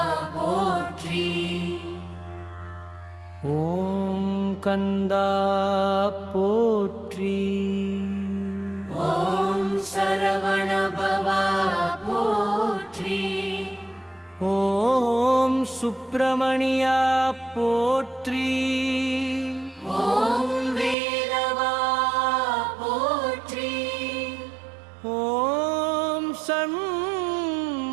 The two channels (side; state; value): left; drops out; at 21.0 s